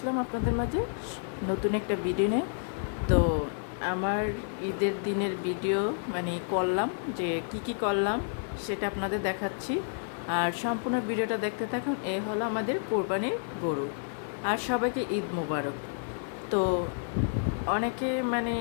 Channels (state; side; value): silent; right; digital silence